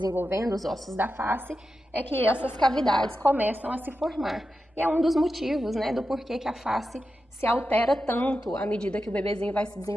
os ossos da face, é que essas cavidades começam a se formar. E é um dos motivos do porquê que a face se altera tanto à medida que o bebezinho vai se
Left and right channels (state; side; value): normal; both; correlation 0.90